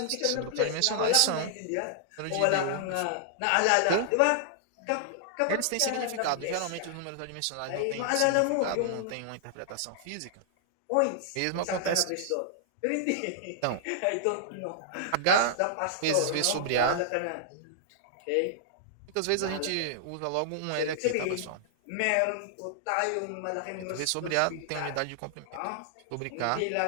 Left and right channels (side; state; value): both; different; correlation -0.01